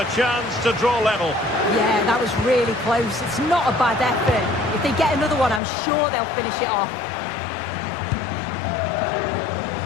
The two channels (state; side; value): drops out; right; at 5.6 s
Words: chance to draw level. Yeah, that was really close. It's not a bad effort. If they get another one, I'm sure they'll finish it off.